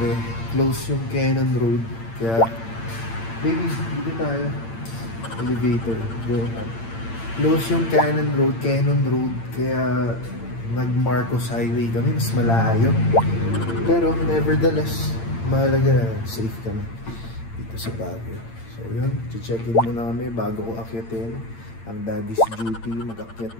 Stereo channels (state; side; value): late; right; 8.8 ms